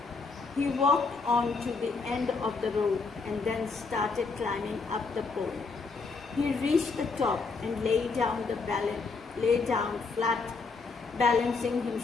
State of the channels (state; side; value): quieter; right; 4.4 dB